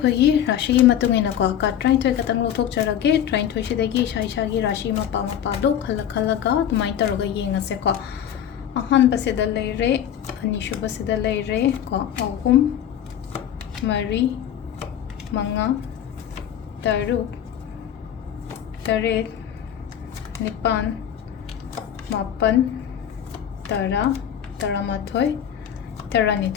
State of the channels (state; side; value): quieter; right; 9.9 dB